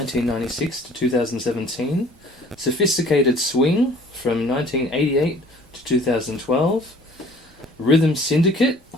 to 2017, Sophisticated Swing from 1988 to 2012, Rhythm Syndicate,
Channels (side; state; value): both; normal; correlation 0.52